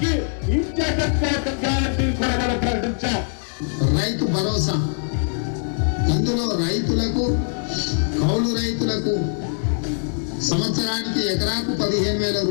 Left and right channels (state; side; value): silent; right; digital silence